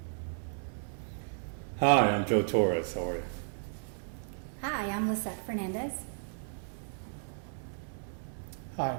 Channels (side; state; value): left; silent; 55 dB below the other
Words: Hi, I'm Joe Torres. How are you? Hi, I'm Lissette Fernandez. Hi,